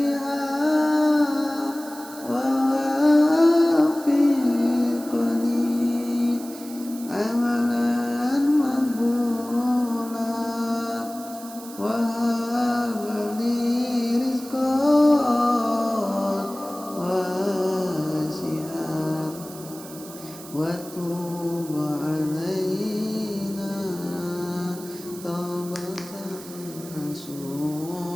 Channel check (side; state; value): right; noise; hiss, 16 dB below the sound